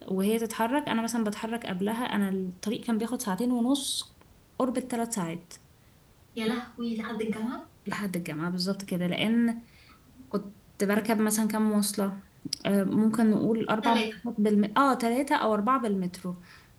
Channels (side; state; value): both; identical; correlation 1.00